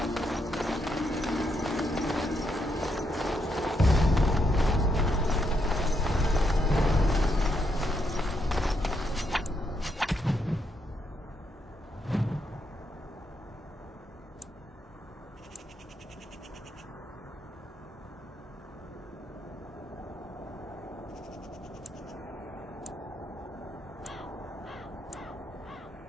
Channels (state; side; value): normal; both; correlation 0.78